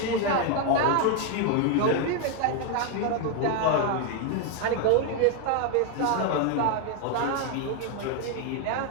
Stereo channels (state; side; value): different; both; correlation 0.01